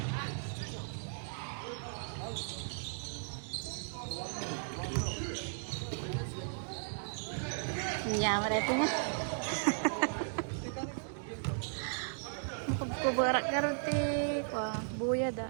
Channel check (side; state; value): left; silent; digital silence